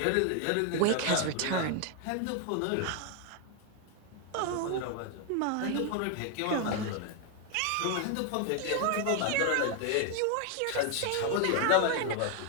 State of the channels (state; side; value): different; both; correlation 0.00